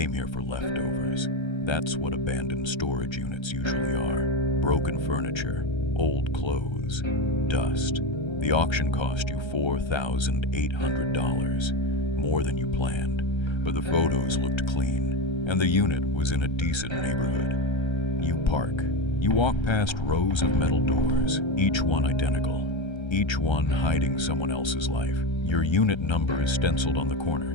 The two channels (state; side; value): late; right; 1.3 ms